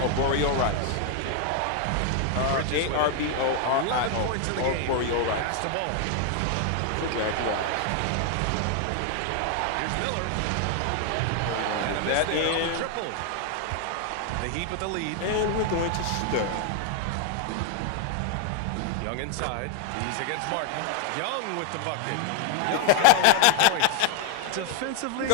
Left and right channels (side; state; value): both; different; correlation 0.00